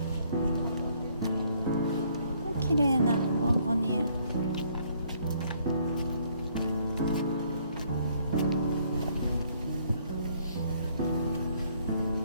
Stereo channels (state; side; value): inverted; both; correlation -0.65